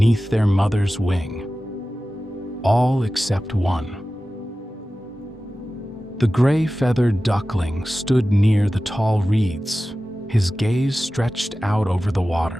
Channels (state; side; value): normal; both; correlation 0.95